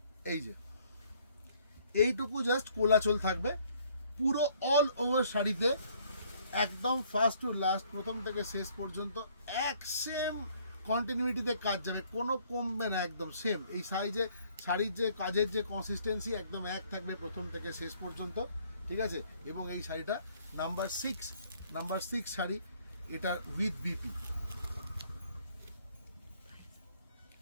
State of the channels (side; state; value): both; inverted; correlation -0.62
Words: এই যে এইটুকু জাস্ট কোলাচল থাকবে, পুরো অল ওভার শাড়িতে একদম ফার্স্ট টু লাস্ট, প্রথম থেকে শেষ পর্যন্ত এক সেম কন্টিনিউটিতে কাজ যাবে, কোনো কমবে না, একদম সেম। এই সাইজে শাড়ির যে কাজের যে কনসিস্টেন্সি একদম এক থাকবে প্রথম থেকে শেষ পর্যন্ত, ঠিক আছে। এবং এই শাড়িটা নাম্বার 6 শাড়ি, এটা উইথ বিপি।